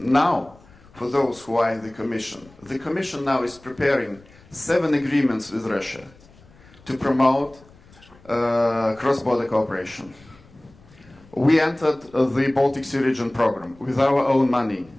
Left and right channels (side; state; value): left; noise; rumble, 26 dB below the sound